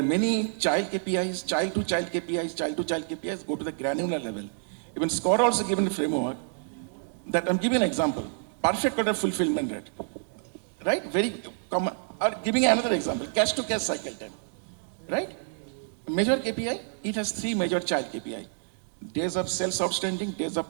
many child KPIs, child to child KPIs, go to the granular level. Even SCORE also given a framework that I'm giving an example. Perfect order fulfillment rate, right? Very common. Or giving another example, cash to cash cycle time, right? Major KPI, it has 3 major child KPI. Days of sales outstanding, days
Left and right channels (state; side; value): silent; left; digital silence